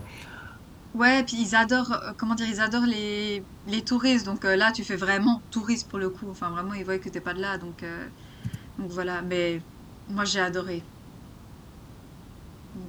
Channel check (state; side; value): identical; both; correlation 1.00